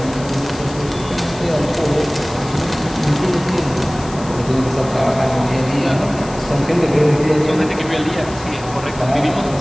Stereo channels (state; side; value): noise; left; hiss, 17 dB below the sound